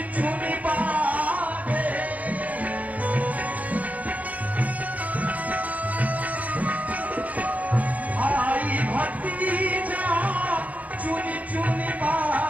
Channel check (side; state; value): left; late; 0.073 ms